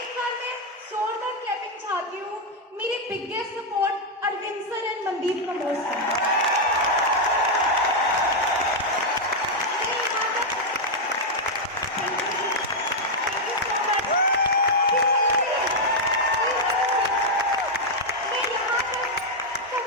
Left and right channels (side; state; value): both; normal; correlation -0.01